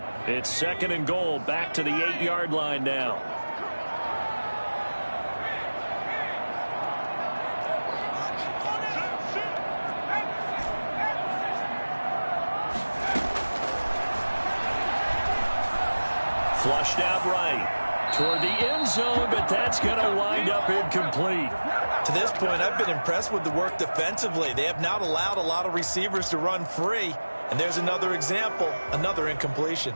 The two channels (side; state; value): both; inverted; correlation -1.00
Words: It's 2nd and goal, back to the 8-yard line now. Flushed out right toward the end zone, but that's going to wind up incomplete. To this point, I've been impressed with the work defensively. They have not allowed a lot of receivers to run free. And there's another example, another incompletion.